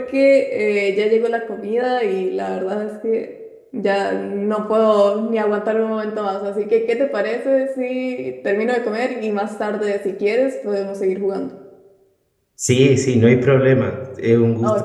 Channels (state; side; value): identical; both; correlation 1.00